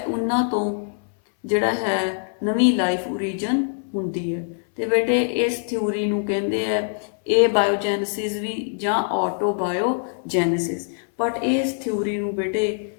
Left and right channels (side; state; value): right; silent; 62 dB below the other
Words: ਉਹਨਾਂ ਤੋਂ ਜਿਹੜਾ ਹੈ ਨਵੀਂ ਲਾਈਫ ਓਰੀਜਨ ਹੁੰਦੀ ਹੈ। ਤੇ ਬੇਟੇ ਇਸ ਥਿਊਰੀ ਨੂੰ ਕਹਿੰਦੇ ਆ ਇਹ ਬਾਇਓਜੈਨਸਿਸ ਵੀ ਜਾਂ ਆਟੋਬਾਇਓਜੈਨਸਿਸ। ਬਟ ਇਸ ਥਿਊਰੀ ਨੂੰ ਬੇਟੇ